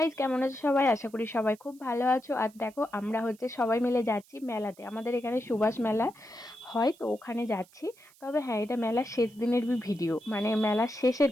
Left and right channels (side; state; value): right; noise; hiss, 28 dB below the sound